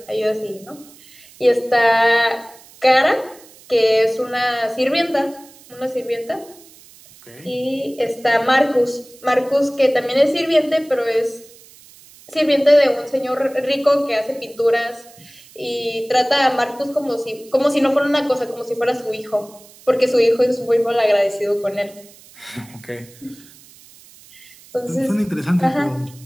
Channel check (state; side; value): noise; right; hiss, 24 dB below the sound